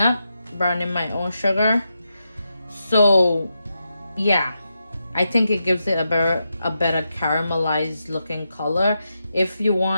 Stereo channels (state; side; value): inverted; both; correlation -0.86